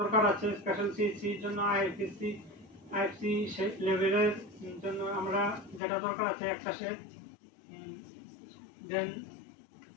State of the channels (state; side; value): drops out; right; at 5.8 s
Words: আছে স্পেশাল সিএসসির জন্য আইএফসি লেভেলের জন্য আমরা যেটা দরকার আছে একটা সেট, দেন